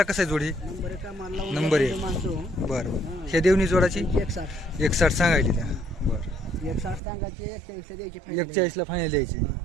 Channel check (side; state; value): left; drops out; at 7.0 s